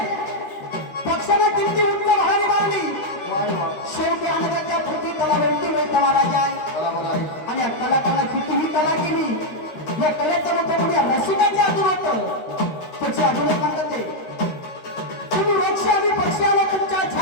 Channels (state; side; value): late; right; 13 ms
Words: पक्षाने किती उच्च भरारी मारली शेवटी अनगत्या पृथ्वी त्याला वेळती मिळतं महाराज आणि या कलाकारांना कितीही कला केली या कलेचं मोठं कोणी रसिकांचे आतून होतं त्याची अजून एक म्हणतात ते तुम्ही वृक्ष आणि पक्षी आला तुमच्या